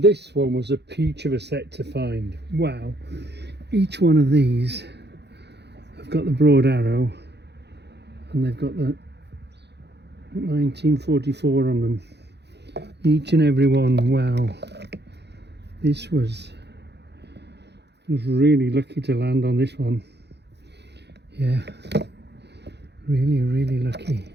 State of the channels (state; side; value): late; left; 0.49 ms